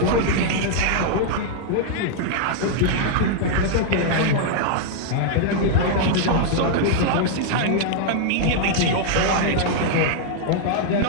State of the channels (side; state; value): both; different; correlation -0.01